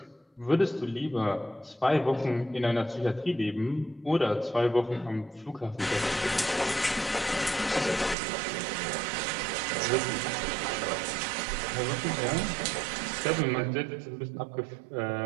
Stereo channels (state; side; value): drops out; left; at 8.2 s